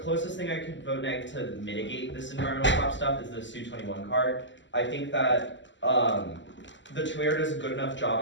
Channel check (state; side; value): late; right; 0.54 ms